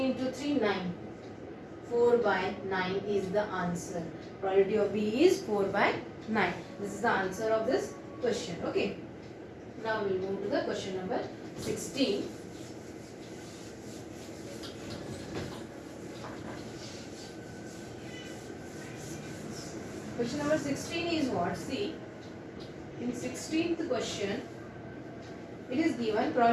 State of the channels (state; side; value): identical; both; correlation 1.00